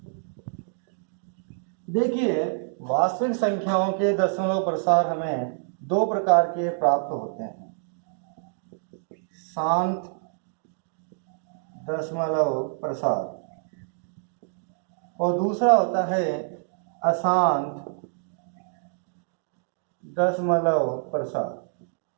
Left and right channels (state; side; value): silent; left; digital silence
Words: देखिए, वास्तविक संख्याओं के दशमलव प्रसार हमें दो प्रकार के प्राप्त होते हैं। शांत दशमलव प्रसार और दूसरा होता है अशांत दशमलव प्रसार।